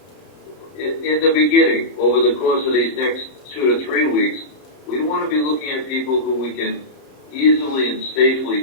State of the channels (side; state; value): right; late; 30 ms